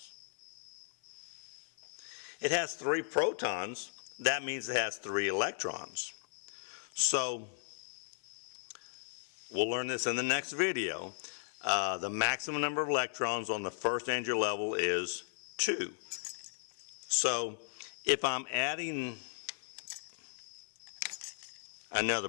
It has 3 protons, that means it has 3 electrons. So, we'll learn this in the next video. The maximum number of electrons on the first energy level is 2. So, if I'm adding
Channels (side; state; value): right; silent; 53 dB below the other